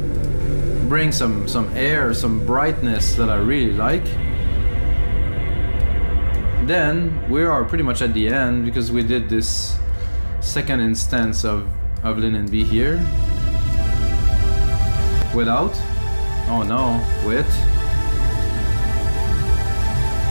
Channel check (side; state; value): both; inverted; correlation -1.00